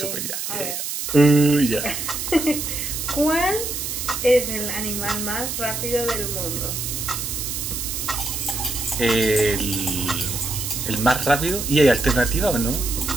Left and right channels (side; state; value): right; noise; hiss, 4 dB below the sound